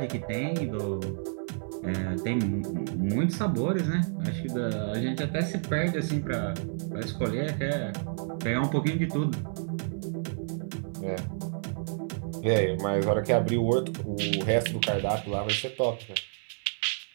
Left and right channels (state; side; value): silent; left; 57 dB below the other